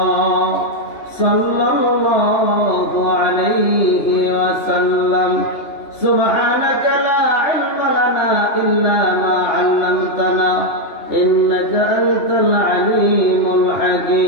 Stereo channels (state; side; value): late; right; 2.9 ms